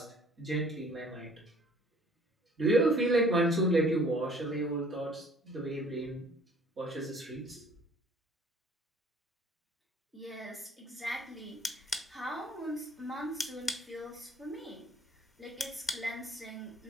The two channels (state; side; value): normal; both; correlation 0.55